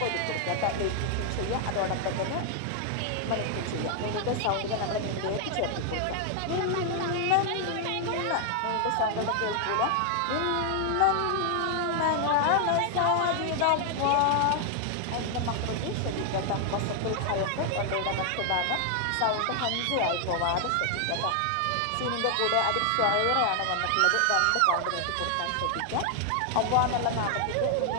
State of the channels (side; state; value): both; different; correlation 0.00